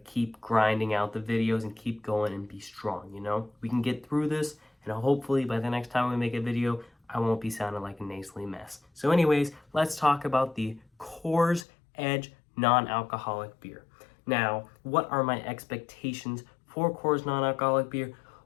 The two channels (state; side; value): drops out; right; at 11.7 s